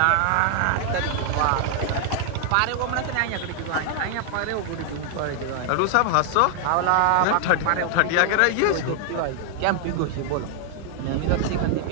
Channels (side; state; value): both; different; correlation 0.00